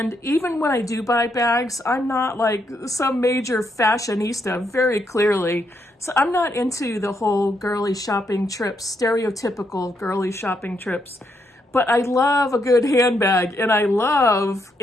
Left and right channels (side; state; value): both; normal; correlation 0.78